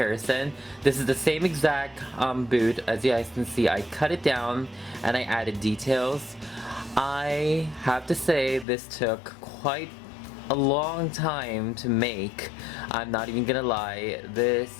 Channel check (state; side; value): drops out; right; at 8.7 s